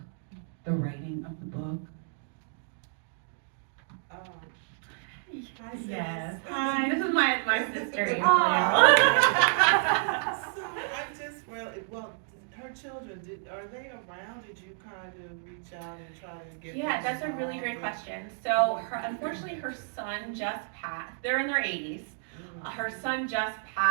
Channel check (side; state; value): left; silent; digital silence